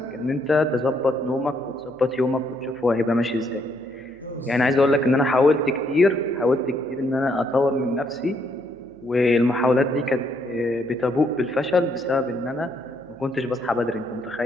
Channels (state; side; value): noise; right; hum, 29 dB below the sound